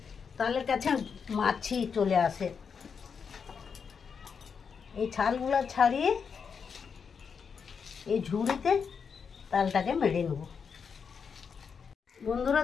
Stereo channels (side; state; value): right; quieter; 6.2 dB